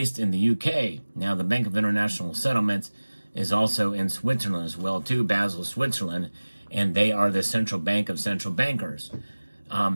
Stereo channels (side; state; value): both; inverted; correlation -1.00